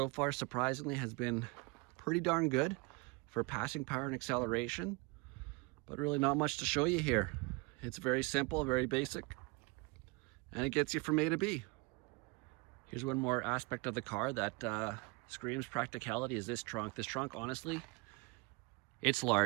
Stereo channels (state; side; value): quieter; left; 28.0 dB